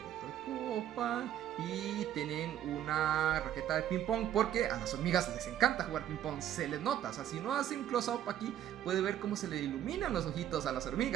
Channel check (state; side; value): quieter; left; 11.1 dB